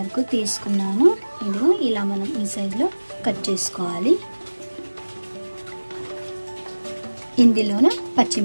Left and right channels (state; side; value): inverted; both; correlation -1.00